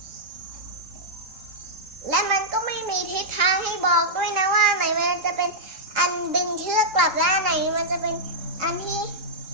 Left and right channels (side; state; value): left; late; 3.8 ms